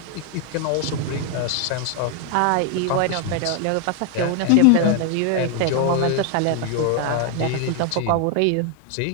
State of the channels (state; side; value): different; both; correlation 0.00